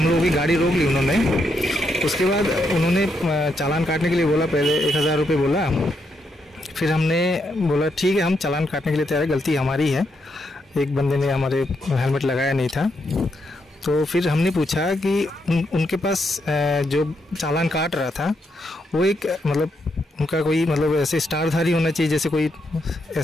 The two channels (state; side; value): normal; both; correlation 0.79